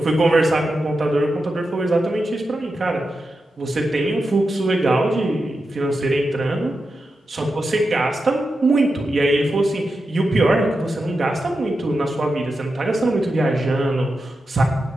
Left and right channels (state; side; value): normal; both; correlation 0.89